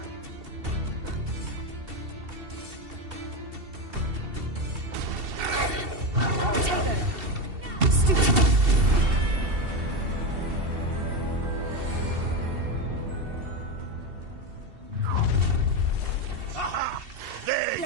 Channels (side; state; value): left; late; 2.7 ms